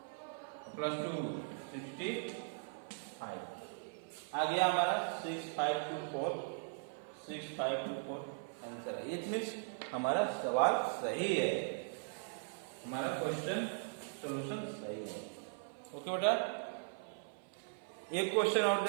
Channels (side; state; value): left; silent; 52 dB below the other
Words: प्लस 2 65 आ गया हमारा 6524, 6524 आंसर है। इट मीन्स हमारा सवाल सही है, हमारा क्वेश्चन सॉल्यूशन सही है। ओके बेटा, एक क्वेश्चन और